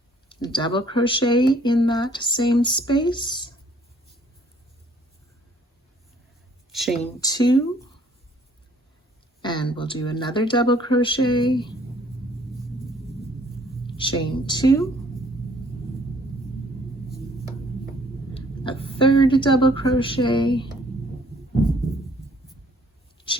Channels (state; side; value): normal; both; correlation 0.61